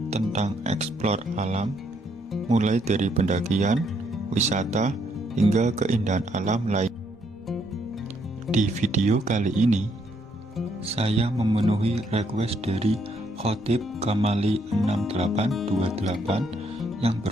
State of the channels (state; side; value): normal; both; correlation 0.72